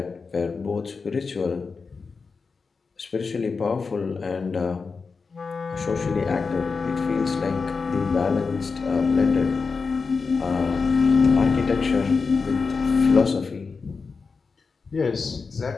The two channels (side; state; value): right; quieter; 4.8 dB